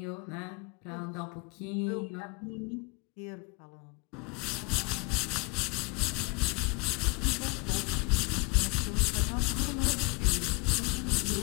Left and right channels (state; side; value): quieter; right; 29.7 dB